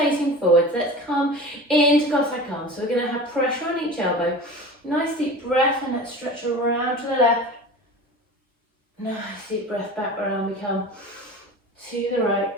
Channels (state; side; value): normal; both; correlation 0.35